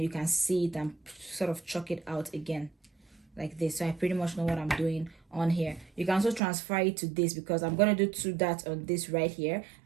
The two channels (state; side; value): drops out; left; at 6.4 s